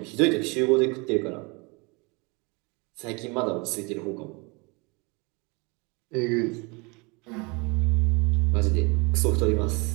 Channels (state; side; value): quieter; left; 28.6 dB